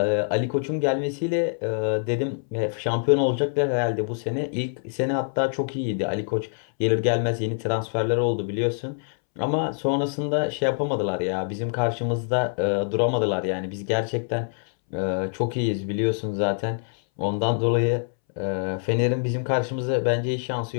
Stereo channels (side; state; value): right; silent; 62 dB below the other